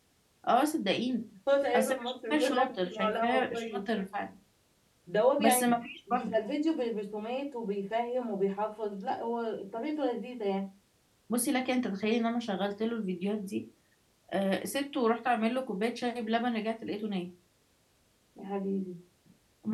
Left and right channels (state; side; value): identical; both; correlation 1.00